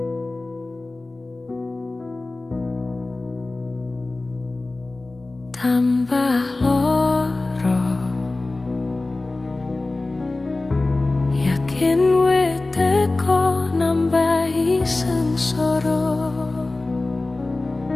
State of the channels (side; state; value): right; quieter; 3.1 dB